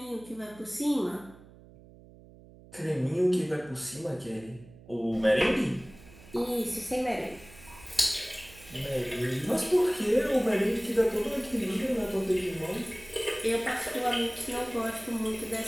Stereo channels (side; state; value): right; noise; hum, 22 dB below the sound